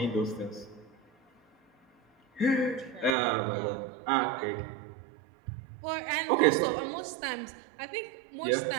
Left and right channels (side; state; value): left; drops out; at 3.2 s